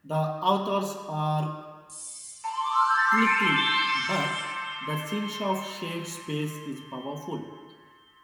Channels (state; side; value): identical; both; correlation 1.00